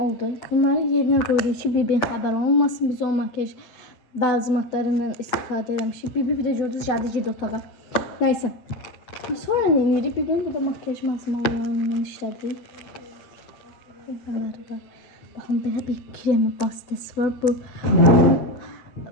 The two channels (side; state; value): right; late; 7.8 ms